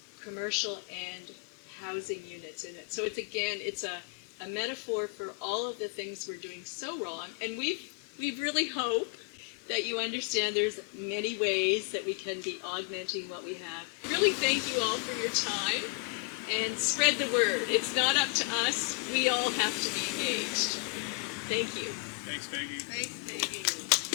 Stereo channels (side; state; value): right; quieter; 32.0 dB